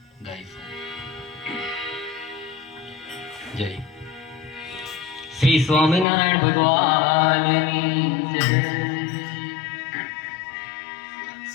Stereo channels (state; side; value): drops out; right; at 6.1 s